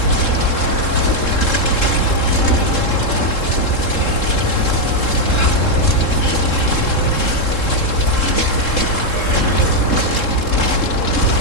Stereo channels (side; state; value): right; late; 3.7 ms